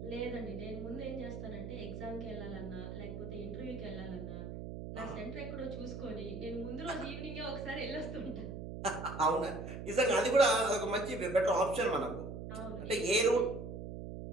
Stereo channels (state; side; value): noise; right; hum, 8 dB below the sound